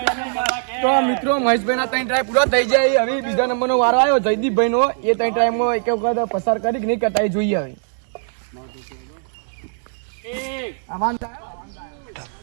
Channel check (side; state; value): left; silent; digital silence